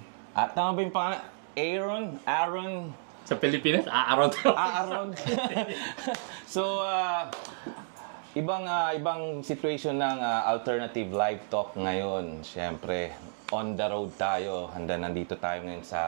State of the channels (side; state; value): left; silent; digital silence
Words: At tama ba yung pangalan? Aaron? Sa Pilipinas, Aaron. Aaron. So, ibang situation ng alternative live talk ngayon. Siyempre, on the road tayo. Nandito tayo ngayon